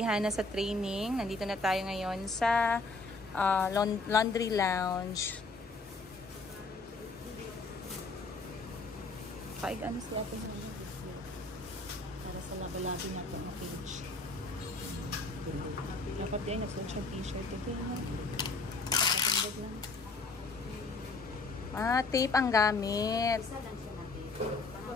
Hana sa training. Nandito na tayo ngayon sa laundry lounge. Paig ano sila ito para sa labi-labi na ito na page. Dapat din, nagsuot siya t-shirt. Okay na. Nakatindog lang. Tape ang gamit. Isa lang siya na tape.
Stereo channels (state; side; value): quieter; right; 3.5 dB